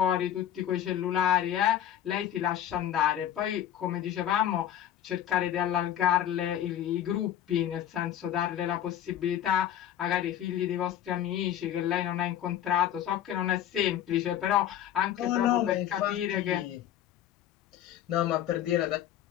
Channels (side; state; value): right; quieter; 11.0 dB